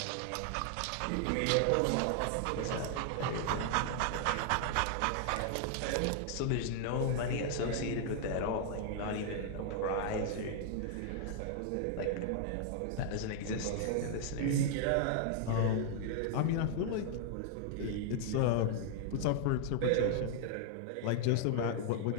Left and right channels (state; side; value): different; both; correlation 0.00